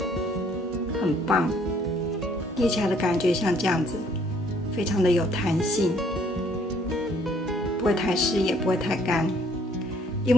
很棒。捏起来的感觉像这样子，非常的有弹性，不会太湿也不会太干。因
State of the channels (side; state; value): both; normal; correlation 0.63